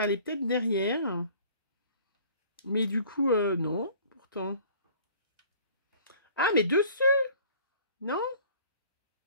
allait peut-être derrière. Mais du coup, non, pourtant. Ah, mais dessus! Non?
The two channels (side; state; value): both; inverted; correlation -0.50